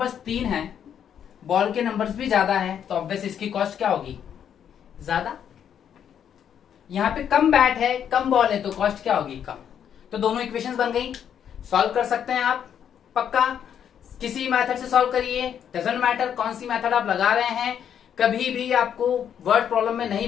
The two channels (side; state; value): right; quieter; 8.8 dB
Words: 3 हैं, बॉल के नंबर्स भी ज्यादा है, तो ऑब्वियस इसकी कॉस्ट क्या होगी? ज्यादा। यहां पे कम बैट है, कम बॉल है, तो कॉस्ट क्या होगी? कम। तो दोनों इक्वेशंस बन गई। सॉल्व कर सकते हैं आप, पक्का किसी मेथड से सॉल्व करिए, डजंट मैटर कौन सी मेथड आप लगा रहे हैं। कभी भी आपको वर्ड प्रॉब्लम में नहीं